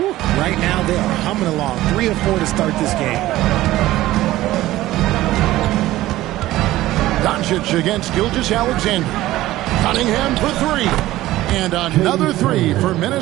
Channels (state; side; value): quieter; left; 16.0 dB